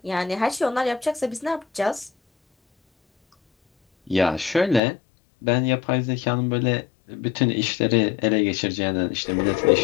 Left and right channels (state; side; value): drops out; right; at 4.8 s